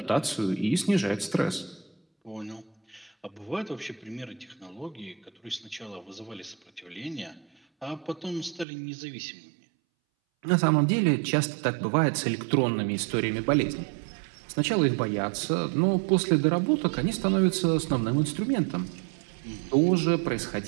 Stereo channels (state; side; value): drops out; left; at 8.7 s